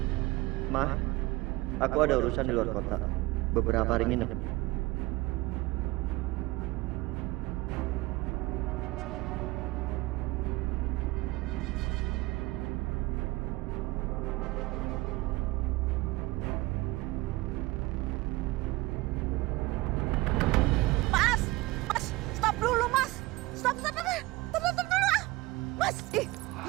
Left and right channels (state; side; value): quieter; left; 20.8 dB